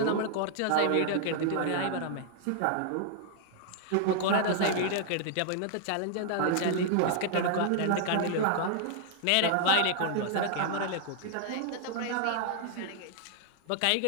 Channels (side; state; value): both; different; correlation 0.00